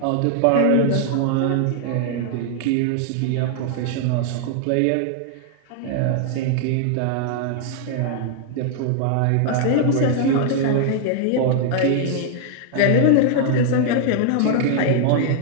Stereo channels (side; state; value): both; different; correlation 0.00